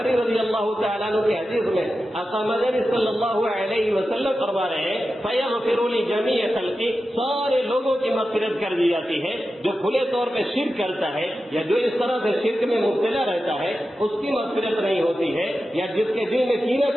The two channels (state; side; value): normal; both; correlation 0.92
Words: رضی اللہ تعالیٰ عنہ کی حدیث میں آقا مدنی صلی اللہ علیہ وسلم فرما رہے ہیں فیغفر لجمیع خلقی, سارے لوگوں کی مغفرت کر دی جاتی ہے. جو کھلے طور پہ شرک کرتا ہے یا جو اس طرح سے شرک میں مبتلا رہتا ہے اس کی مغفرت نہیں ہوتی ہے, یا جس کے دل میں کینہ